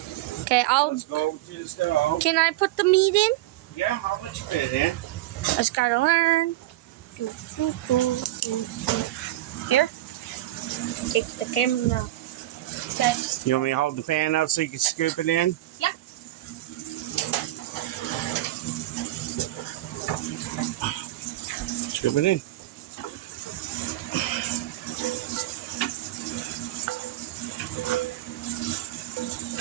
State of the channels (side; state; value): left; quieter; 15.8 dB